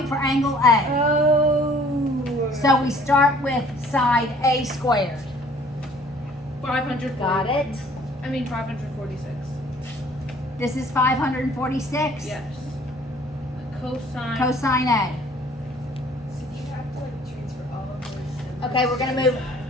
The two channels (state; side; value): normal; both; correlation 0.55